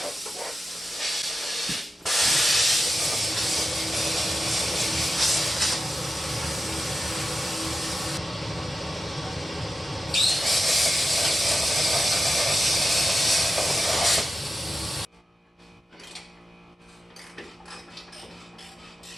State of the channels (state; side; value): normal; both; correlation 0.91